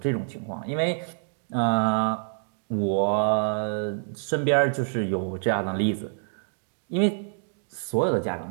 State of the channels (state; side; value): silent; left; digital silence